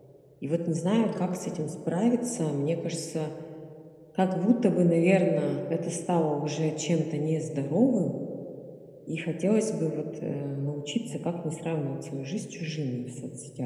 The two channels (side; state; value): both; identical; correlation 1.00